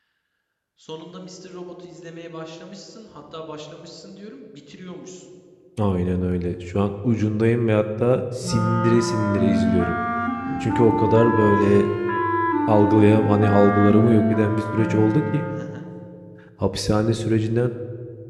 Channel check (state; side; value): identical; both; correlation 1.00